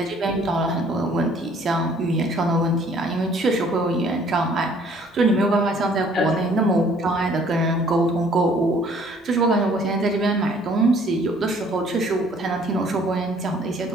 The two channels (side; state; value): both; normal; correlation 0.58